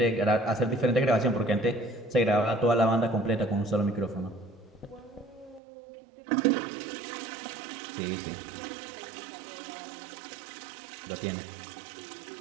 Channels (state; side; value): drops out; left; at 5.6 s